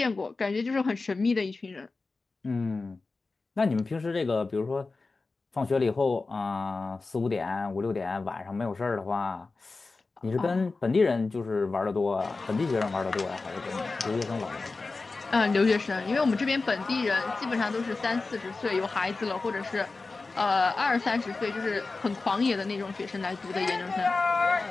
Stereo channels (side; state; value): right; quieter; 3.8 dB